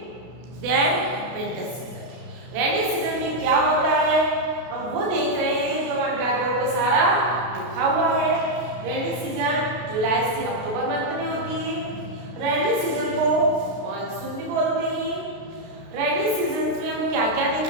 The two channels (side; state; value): left; late; 32 ms